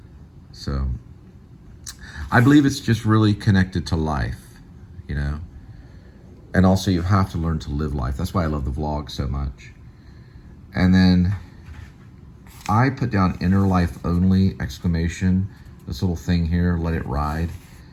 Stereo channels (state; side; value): identical; both; correlation 1.00